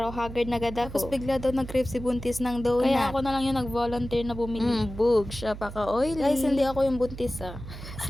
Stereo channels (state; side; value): noise; right; hum, 11 dB below the sound